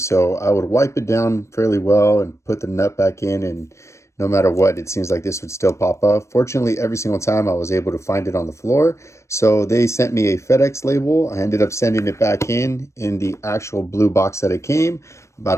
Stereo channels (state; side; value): late; right; 0.14 ms